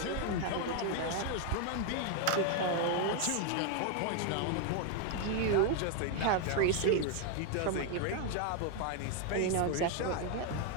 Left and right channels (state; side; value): different; both; correlation 0.00